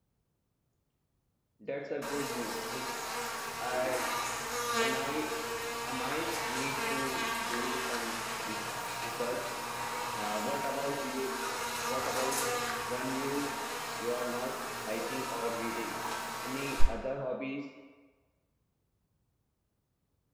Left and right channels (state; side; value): identical; both; correlation 1.00